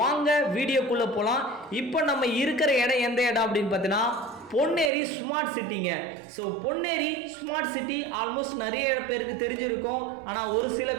வாங்க வீடியோக்குள்ளே போகலாம். இப்போ நம்ம இருக்கிற இடம் எந்த இடம் அப்படின்னு பார்த்தீங்கன்னா பொன்னேரி ஸ்மார்ட் சிட்டிங்க. So Ponneri smart city almost நிறைய பேருக்கு தெரிஞ்சிருக்கும், ஆனால் ஒரு சில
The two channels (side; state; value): left; drops out; at 4.9 s